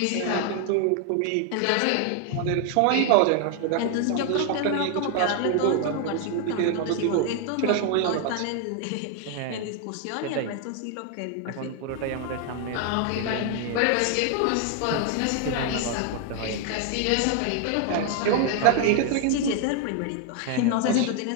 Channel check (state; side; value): different; both; correlation 0.00